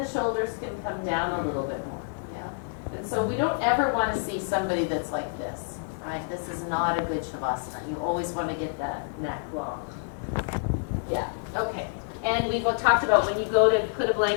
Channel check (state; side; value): silent; right; digital silence